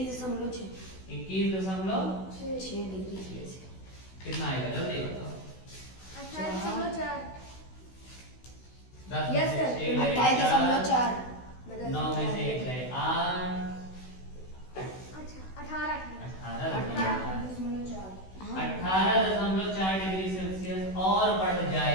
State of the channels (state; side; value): late; right; 16 ms